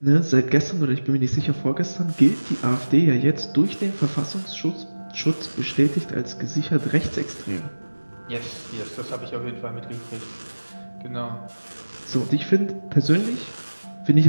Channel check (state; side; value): inverted; both; correlation -1.00